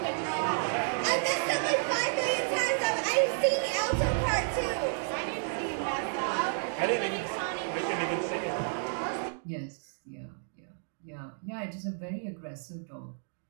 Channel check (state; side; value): silent; left; digital silence